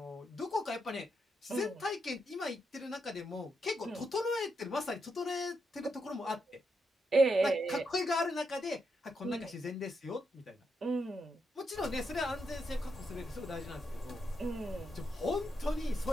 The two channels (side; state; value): both; normal; correlation 0.82